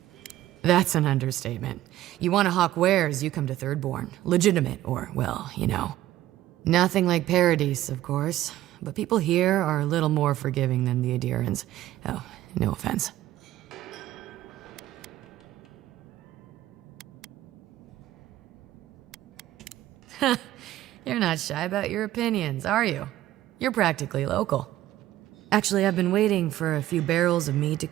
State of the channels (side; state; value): left; quieter; 14.3 dB